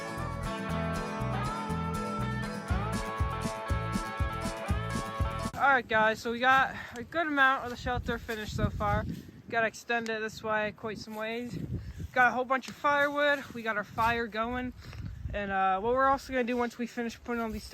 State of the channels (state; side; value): identical; both; correlation 1.00